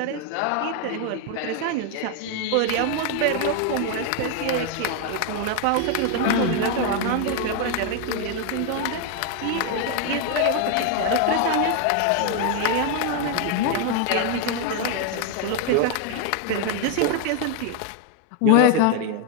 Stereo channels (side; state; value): both; different; correlation 0.01